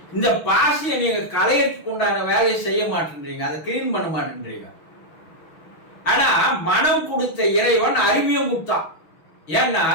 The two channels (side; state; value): right; late; 6.2 ms